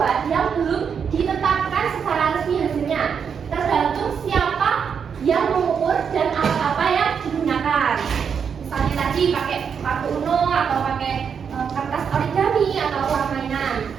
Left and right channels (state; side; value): quieter; left; 6.9 dB